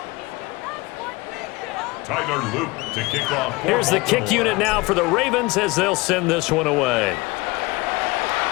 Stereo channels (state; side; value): quieter; right; 23.4 dB